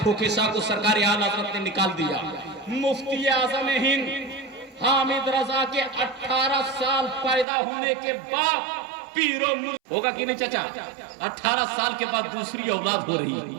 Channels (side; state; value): left; drops out; at 7.5 s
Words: सा को सरकार आला हज़रत ने निकाल दिया। मुफ्ती आज़म हिंद हामिद रजा के 18 साल पैदा होने के बाद पीरो होगा कि नहीं चाचा? 18 साल के बाद दूसरी औलाद हो रही